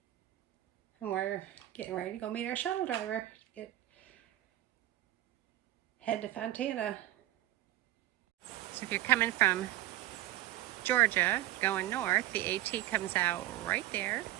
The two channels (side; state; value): left; quieter; 15.2 dB